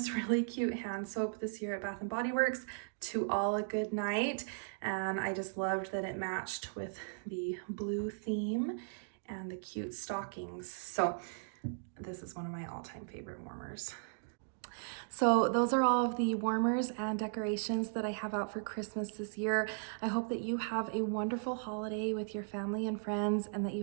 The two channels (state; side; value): silent; left; digital silence